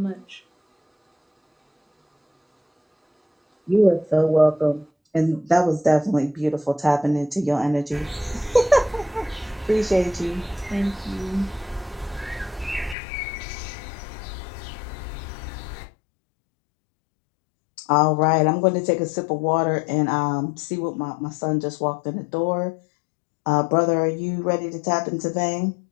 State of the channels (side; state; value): right; drops out; at 13.0 s